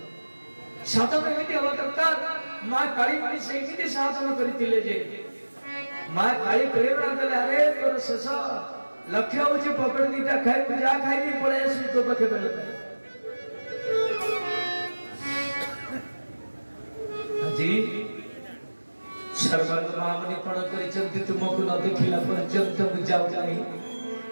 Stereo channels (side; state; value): both; inverted; correlation -1.00